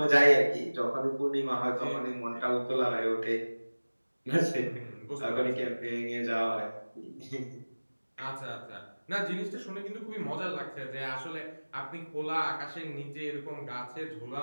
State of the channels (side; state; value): both; inverted; correlation -1.00